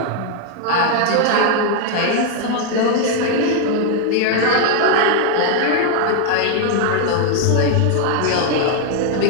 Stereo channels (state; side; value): different; both; correlation 0.00